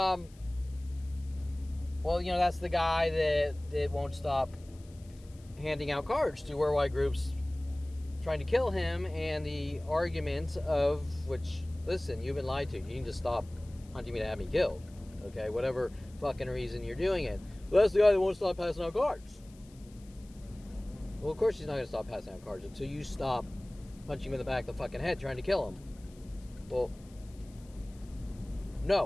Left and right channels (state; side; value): noise; left; hiss, 27 dB below the sound